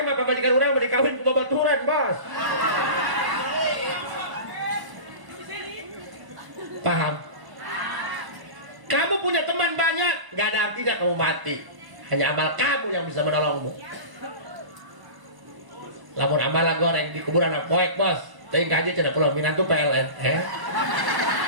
mah pamajikan urang mah dikawin ku babaturan, bos. Paham? Kamu punya teman banyak, gak ada artinya kamu mati. Hanya amal kamu yang bisa menolongmu. Lamun amal goreng di kuburan poek, bos. Teuing kaji cenah pulau minantu PLN.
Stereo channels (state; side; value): late; left; 1.0 ms